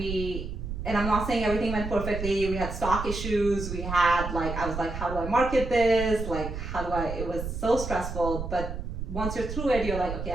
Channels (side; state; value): right; noise; rumble, 6 dB below the sound